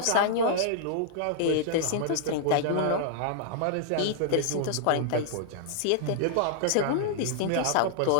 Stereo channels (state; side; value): different; both; correlation -0.01